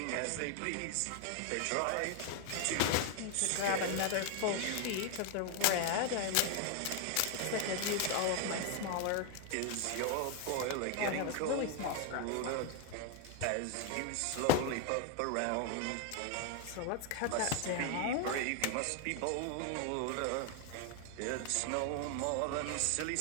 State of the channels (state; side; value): different; both; correlation 0.01